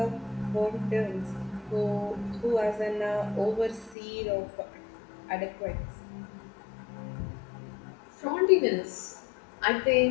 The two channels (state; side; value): drops out; right; at 4.0 s